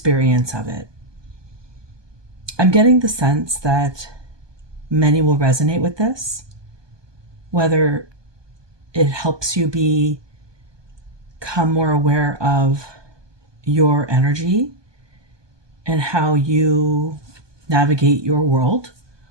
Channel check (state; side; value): late; left; 1.2 ms